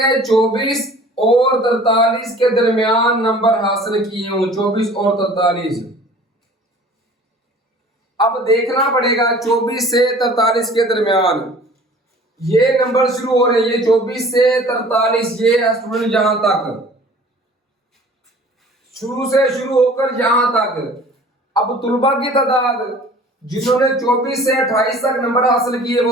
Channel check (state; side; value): normal; both; correlation 0.47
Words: 24 और 43 के दरमियान नंबर हासिल किए हों। 24 और 43। अब देखना पड़ेगा 24 से 43 के दरमियान ये नंबर शुरू हो रहे हैं। ये 24 से 43, ये है स्टूडेंट यहां तक, शुरू से शुरू होकर यहां तक। अब तुलबा की तादाद जिन्होंने 24 से 28 तक नंबर हासिल किए